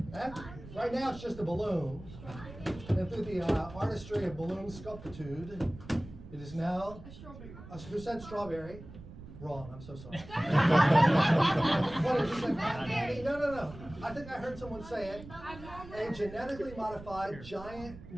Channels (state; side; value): noise; right; rumble, 15 dB below the sound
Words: Right now it's just a balloon. And through the artistry of balloon sculptitude, it is now. A strawberry. Who said strawberry? Wrong, I'm so sorry. What did you say? No. I think I heard someone say it. A genetically modified giant